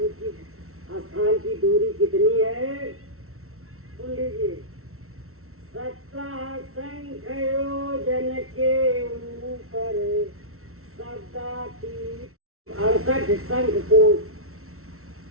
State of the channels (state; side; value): late; left; 0.63 ms